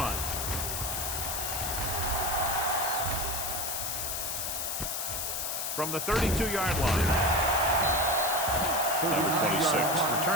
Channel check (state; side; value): noise; left; hiss, 2 dB below the sound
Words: From the 32-yard line. Number 26